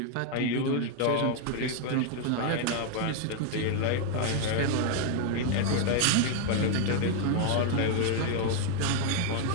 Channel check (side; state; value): both; different; correlation 0.00